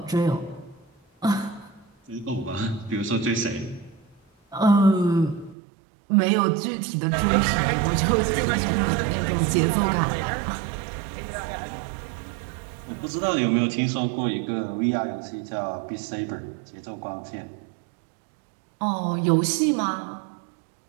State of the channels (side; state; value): left; drops out; at 5.6 s